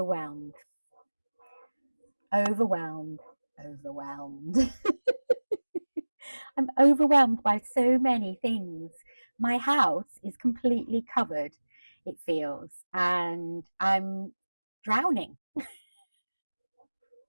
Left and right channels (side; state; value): both; inverted; correlation -1.00